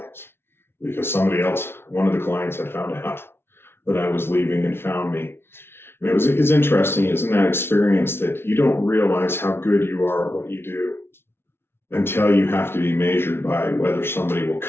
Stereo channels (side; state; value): right; late; 0.12 ms